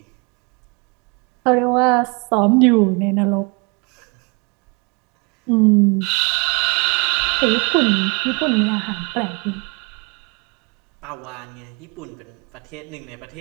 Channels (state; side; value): quieter; left; 31.3 dB